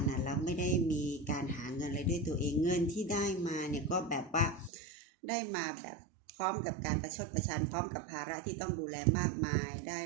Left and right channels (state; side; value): drops out; left; at 4.7 s